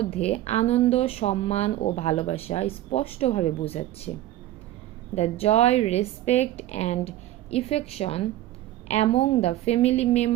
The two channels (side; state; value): left; quieter; 14.3 dB